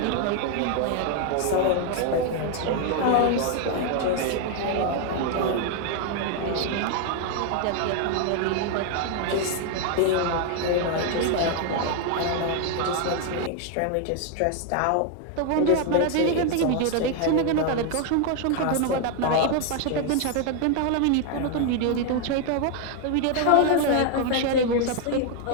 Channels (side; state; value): both; different; correlation 0.00